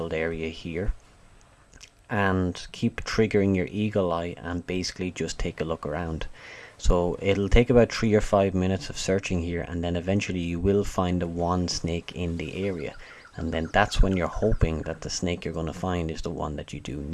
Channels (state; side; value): identical; both; correlation 1.00